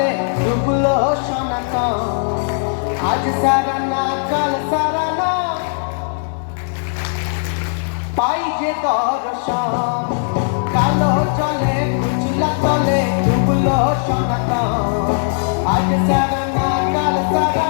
ডুবলো সনাতন। আজ সারা না কাল সারা না পাই যে দর্শন, কালো জলে কুচলা তলে ডুবলো সনাতন। আজ সারা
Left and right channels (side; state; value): right; silent; digital silence